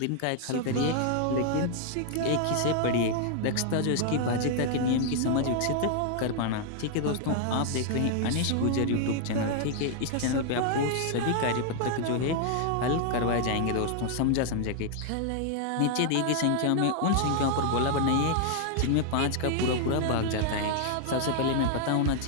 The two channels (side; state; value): both; different; correlation 0.00